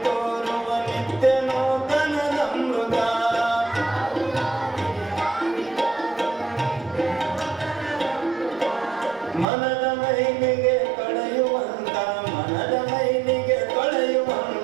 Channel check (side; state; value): left; drops out; at 9.5 s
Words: ತೋರುವ ನಿತ್ಯ ನೂತನದಮೃತ ಮನದ ಮೈಲಿಗೆ ಕಳೆಯುವಂತ ಮನದ ಮೈಲಿಗೆ